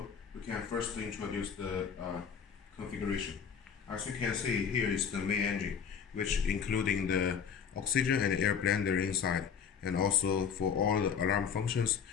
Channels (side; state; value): right; quieter; 7.0 dB